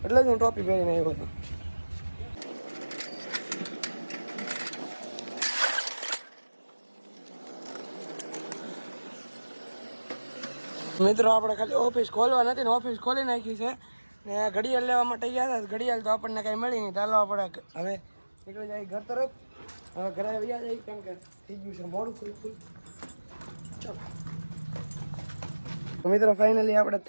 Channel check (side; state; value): both; inverted; correlation -1.00